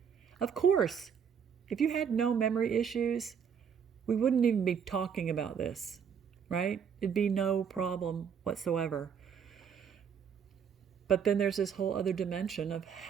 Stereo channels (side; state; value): left; quieter; 7.3 dB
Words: Of course, if you had no memory issues, we wouldn't even be talking about this, right? It'd be no problem whatsoever. But then there's this whole other dimension of